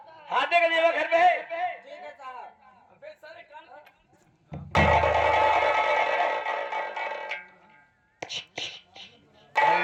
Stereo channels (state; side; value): identical; both; correlation 1.00